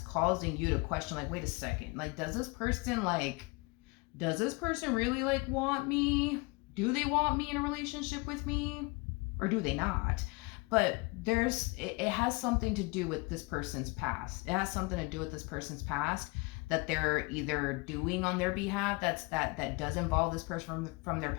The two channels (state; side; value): quieter; right; 27.5 dB